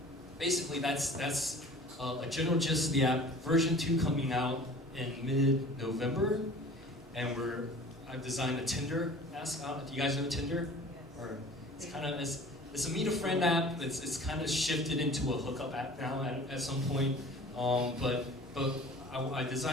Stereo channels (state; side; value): normal; both; correlation 0.44